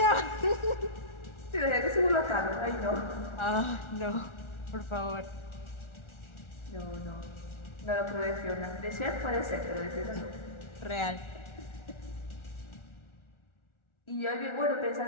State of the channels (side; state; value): right; late; 1.4 ms